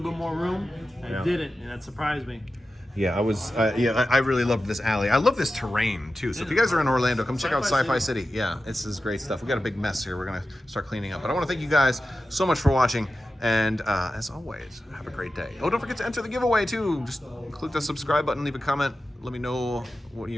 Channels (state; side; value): normal; both; correlation 0.93